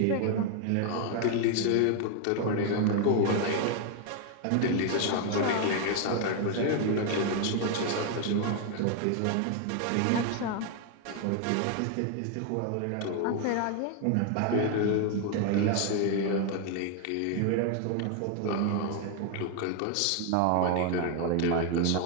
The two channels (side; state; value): both; different; correlation 0.00